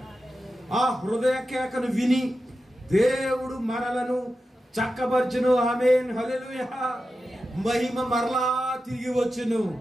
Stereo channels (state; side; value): normal; both; correlation 0.91